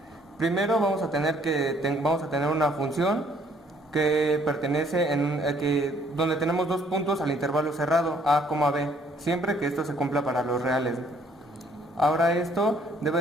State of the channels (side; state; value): both; normal; correlation 0.63